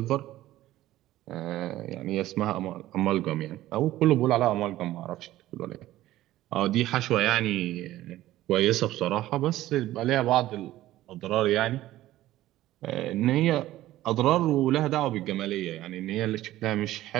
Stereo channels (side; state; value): left; quieter; 15.1 dB